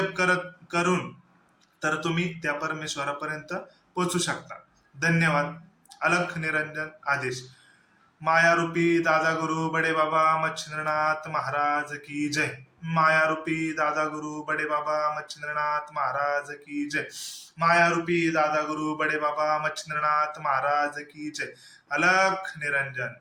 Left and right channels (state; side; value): identical; both; correlation 1.00